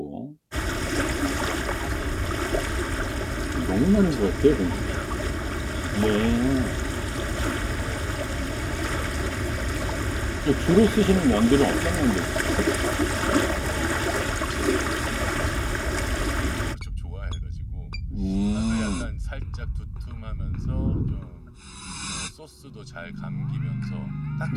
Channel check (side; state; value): both; identical; correlation 1.00